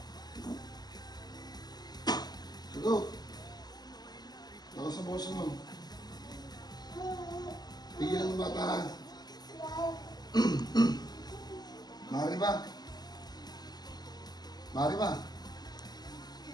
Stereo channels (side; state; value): right; late; 0.20 ms